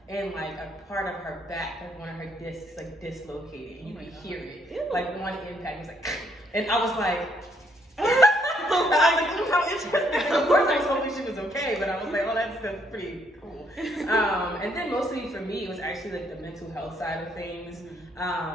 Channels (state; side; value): normal; both; correlation 0.70